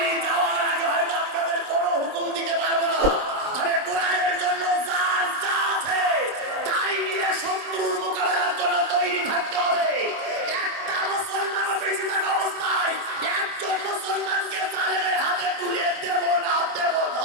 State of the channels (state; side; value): late; left; 26 ms